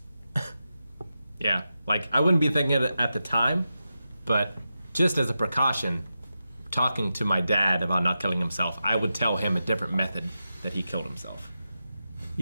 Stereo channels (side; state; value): both; inverted; correlation -0.90